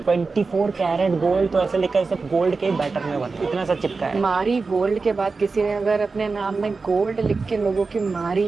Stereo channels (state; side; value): quieter; left; 4.2 dB